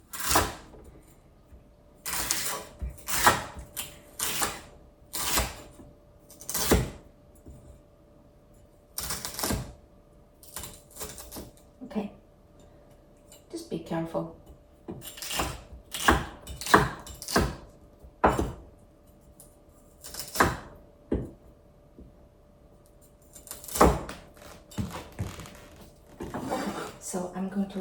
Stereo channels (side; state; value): both; identical; correlation 1.00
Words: Okay. Just be careful. So I'm going to